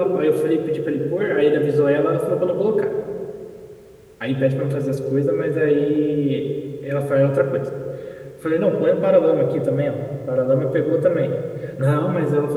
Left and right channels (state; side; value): identical; both; correlation 1.00